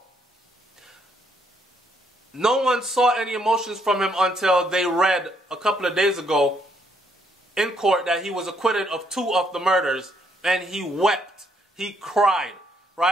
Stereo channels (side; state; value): both; normal; correlation 0.71